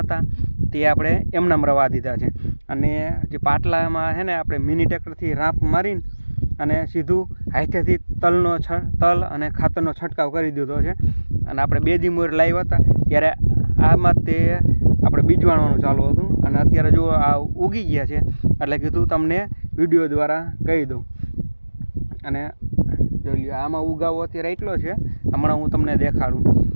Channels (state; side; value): inverted; both; correlation -1.00